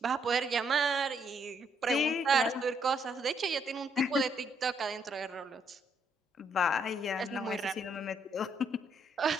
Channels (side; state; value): both; normal; correlation 0.72